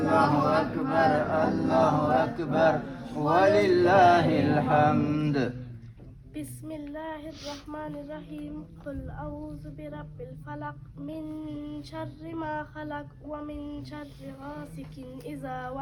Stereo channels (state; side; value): identical; both; correlation 1.00